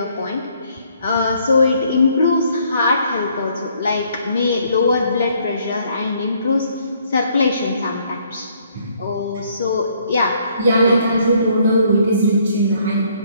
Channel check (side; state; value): both; inverted; correlation -0.66